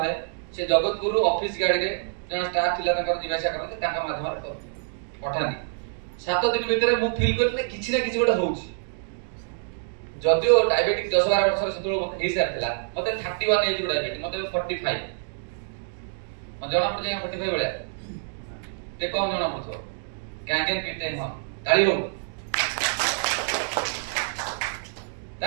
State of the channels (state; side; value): silent; left; digital silence